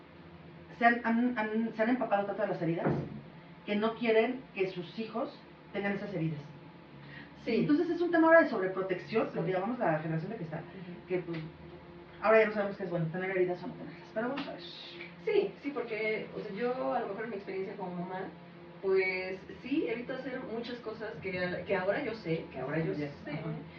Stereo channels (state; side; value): identical; both; correlation 1.00